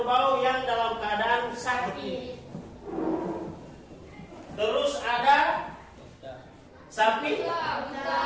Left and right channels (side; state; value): both; identical; correlation 1.00